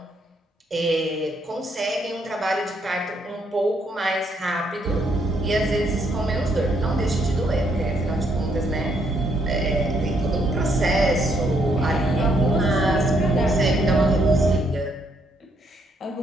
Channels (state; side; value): normal; both; correlation 0.72